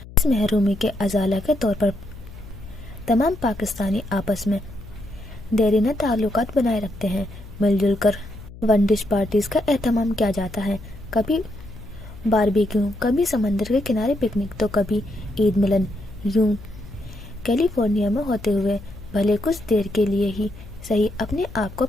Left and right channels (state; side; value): noise; left; hum, 17 dB below the sound